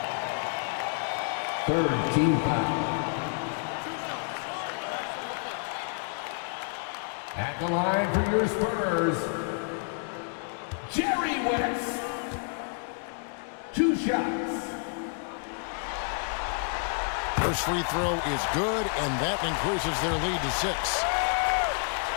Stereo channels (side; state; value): right; silent; 57 dB below the other